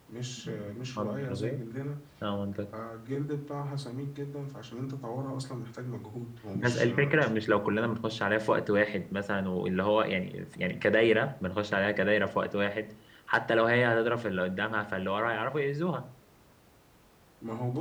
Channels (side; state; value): both; identical; correlation 1.00